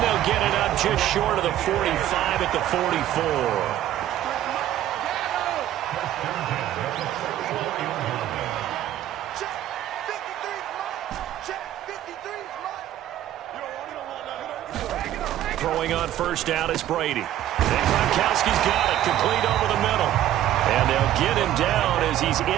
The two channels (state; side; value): quieter; left; 12.5 dB